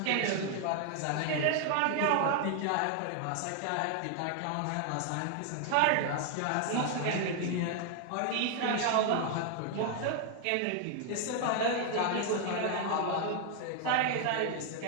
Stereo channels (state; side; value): different; both; correlation 0.00